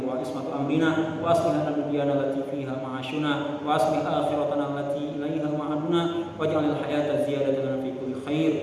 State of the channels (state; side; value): identical; both; correlation 1.00